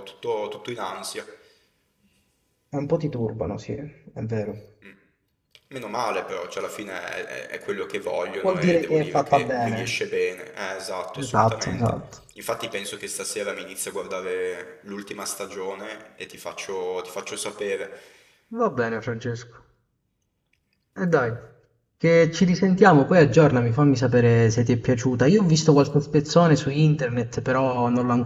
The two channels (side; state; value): both; identical; correlation 1.00